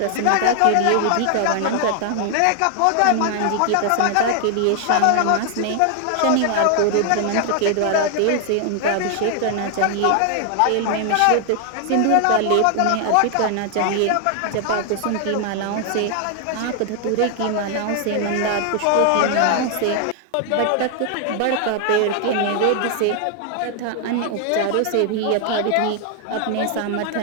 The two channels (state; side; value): different; both; correlation 0.00